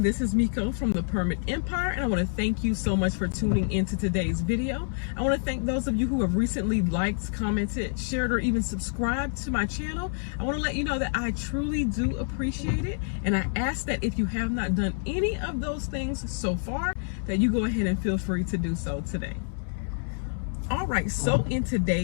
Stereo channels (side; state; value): right; silent; 59 dB below the other